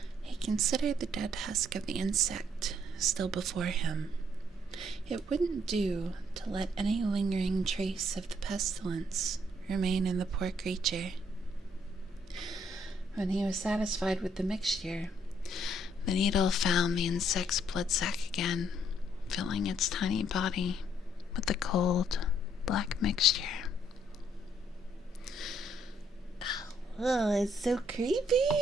He considered the dead husk of the insect still before him. It wouldn't do to let any lingering trace of the pestilence remain in the poor creature. When he was satisfied with the mixture, the needle found the insect's blood sac again, filling its tiny body with the cold, black mixture. Oh, it's so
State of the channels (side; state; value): both; normal; correlation 0.68